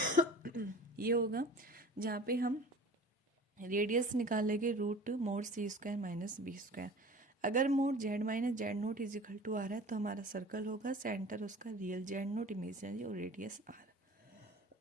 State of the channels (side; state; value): both; normal; correlation 0.42